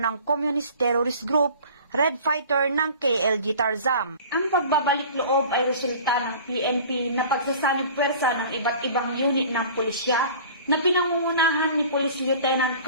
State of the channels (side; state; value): both; inverted; correlation -0.44